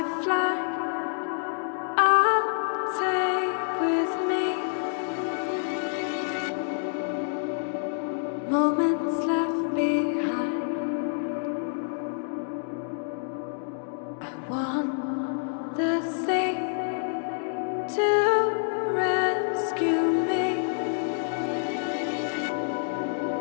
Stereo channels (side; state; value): right; silent; digital silence